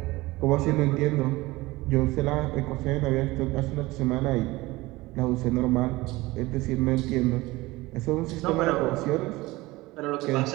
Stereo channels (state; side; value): quieter; left; 20.3 dB